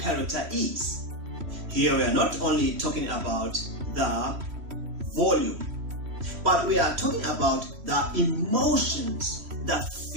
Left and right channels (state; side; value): late; left; 3.1 ms